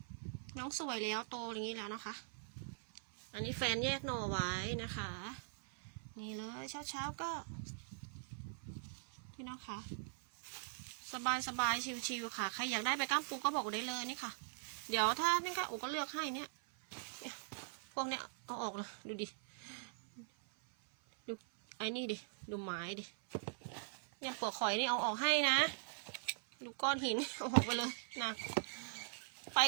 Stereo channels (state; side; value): silent; left; 50 dB below the other